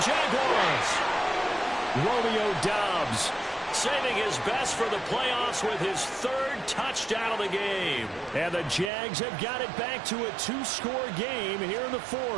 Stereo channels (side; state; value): left; drops out; at 8.9 s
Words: Jaguars! Romeo Dobbs saving his best for the playoffs with his 3rd touchdown of the game. And the Jags have got it back to a 2-score game here in the